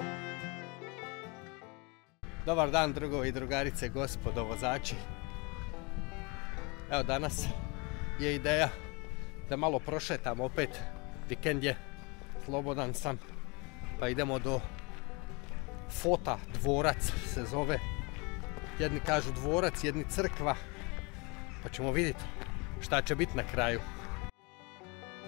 dan drugovi i drugarice, gospodo vozači. Evo danas je ideja da malo prošetam opet, vikend je, slobodan sam, pa idemo do Fota, dvorac se zove. Jedni kažu dvorac, jedni crkva, pa ćemo vidjeti šta će biti na kraju.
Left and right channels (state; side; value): quieter; right; 29.2 dB